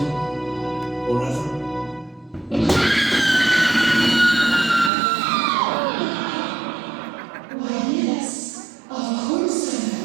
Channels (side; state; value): left; drops out; at 4.9 s